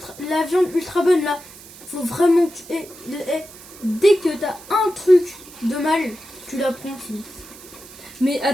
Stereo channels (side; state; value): right; noise; hiss, 19 dB below the sound